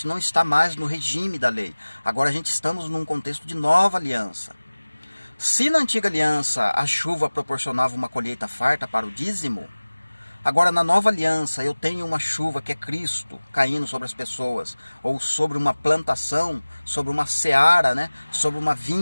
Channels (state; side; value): inverted; both; correlation -1.00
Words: não está mais no regime da lei. Agora a gente estamos num contexto de nova aliança. Se na antiga aliança a chuva proporcionava uma colheita farta para o dízimo, agora na nova aliança eu tenho uma chuva que é Cristo caindo sobre as pessoas, ou sobre uma plantação, sobre uma seara, né? Sobre uma